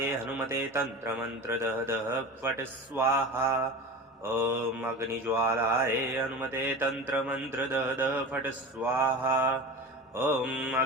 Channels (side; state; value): both; normal; correlation 0.31